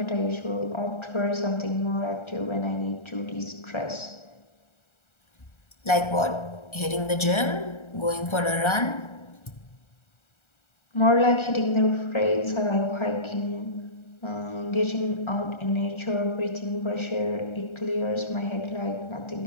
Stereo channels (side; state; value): right; late; 1.3 ms